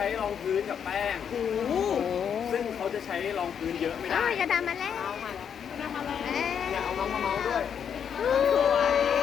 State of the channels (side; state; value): right; quieter; 7.9 dB